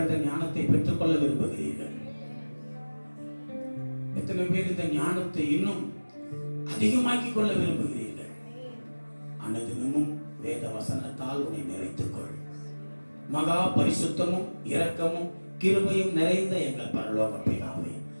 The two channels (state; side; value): inverted; both; correlation -1.00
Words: ஞானத்தை பெற்றுக்கொள்ள விரும்புகிறீர்கள்? எத்தனை பேர் இந்த ஞானத்தை இன்னும் அதிகமாக்கிக் கொள்ள விரும்புகிறீர்கள்? அனுதினமும் வேத வசனத்தால் உன்னை நிறைத்துக் கொள். மகா பரிசுத்தமும் இரக்கமும் கிருபையும் நிறைந்த எங்கள் பரலோக பிதாவே,